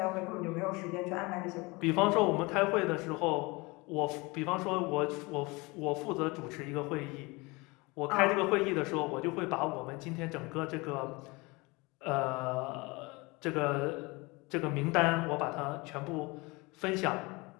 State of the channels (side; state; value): right; quieter; 25.1 dB